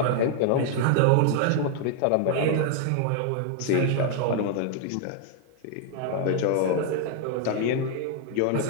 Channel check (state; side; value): different; both; correlation 0.00